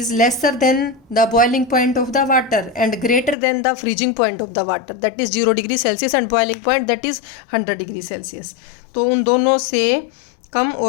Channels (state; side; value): drops out; right; at 3.4 s